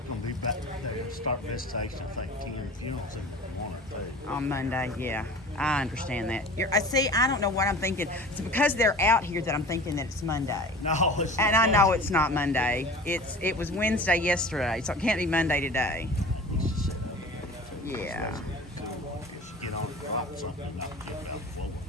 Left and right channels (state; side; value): normal; both; correlation 0.39